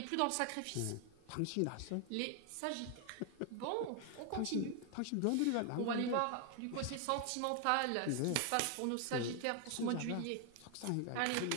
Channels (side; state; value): both; different; correlation 0.00